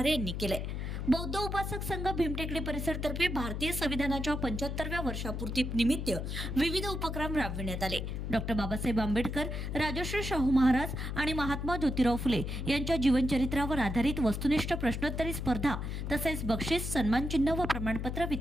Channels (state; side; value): noise; left; hum, 4 dB below the sound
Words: यांनी केले। बौद्ध उपासक संघ भीमटेकडी परिसरतर्फे भारतीय संविधानाच्या 75व्या वर्षापूर्ती निमित्त विविध उपक्रम राबविण्यात आले। डॉक्टर बाबासाहेब आंबेडकर, राजर्षी शाहू महाराज आणि महात्मा ज्योतिराव फुले यांच्या जीवनचरित्रावर आधारित वस्तुनिष्ठ प्रश्नोत्तरी स्पर्धा तसेच बक्षीस, सन्मानचिन्ह व प्रमाणपत्र